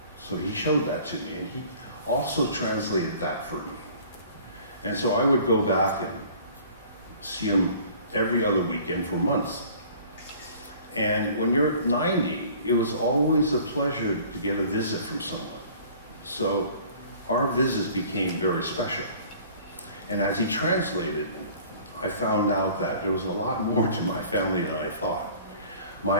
So he showed that to me, and he also translated that for me. And so I would go back and see him every other weekend for months. And when you're 90, it was always a pleasure to get a visit from someone. So our visits became very special. And as he translated, I found out that there was a lot more to my family than I thought.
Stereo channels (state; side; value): inverted; both; correlation -0.49